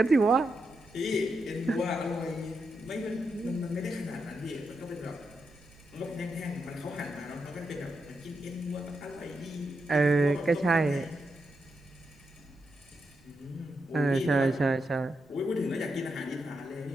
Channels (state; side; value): noise; right; rumble, 28 dB below the sound